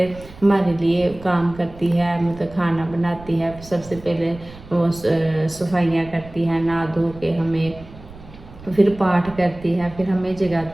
हमारे लिए काम करती है, मतलब खाना बनाती है, सबसे पहले वो सफाइयाँ करती है, नहा धो के हमें फिर पाठ करती है, फिर हमें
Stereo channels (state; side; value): noise; right; rumble, 18 dB below the sound